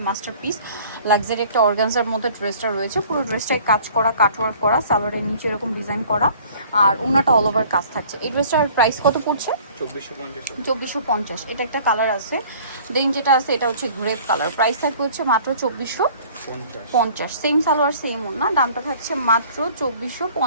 মাস্টার পিস লাক্সারি একটা অর্গানজার মধ্যে ড্রেসটা রয়েছে। পুরো ড্রেসটাই কাজ করা, কাটওয়ার্ক করা, সালোয়ারের নিচে এরকম ডিজাইন করা আর ওনাটা অল ওভার কাজ থাকছে। এই ড্রেসটার প্রাইস কত পড়ছে? 2450। এটা একটা কালার আছে, দেন যেটা আছে এটা হচ্ছে গ্রেপ কালার। প্রাইস থাকবে হচ্ছে মাত্র 2450। সেম সালোয়ার সেম ওড়না, দামটা থাকছে মাত্র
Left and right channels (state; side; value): inverted; both; correlation -0.51